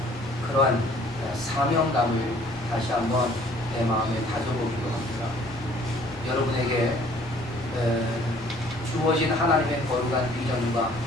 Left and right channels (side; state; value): both; normal; correlation 0.56